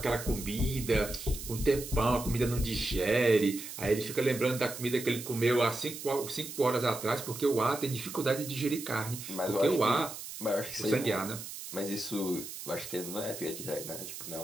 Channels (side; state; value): right; noise; hiss, 10 dB below the sound